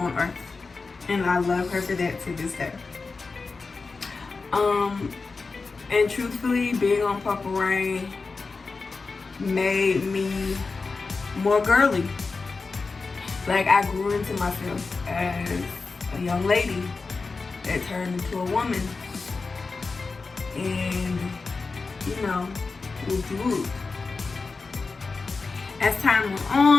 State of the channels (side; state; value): right; quieter; 4.2 dB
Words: earth. And I love her for that to this day. And truthfully, being on Purple Rain made me more girly. Like, I grew into myself as a young lady that turned into a woman. And, you know, whoop. As time went